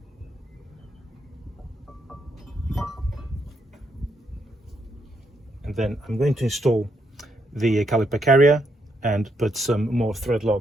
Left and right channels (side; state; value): both; normal; correlation 0.77